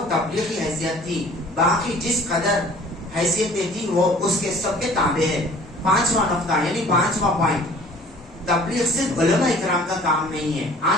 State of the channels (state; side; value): normal; both; correlation 0.50